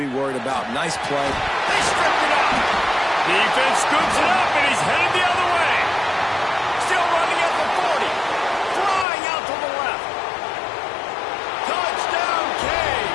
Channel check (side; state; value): right; drops out; at 9.1 s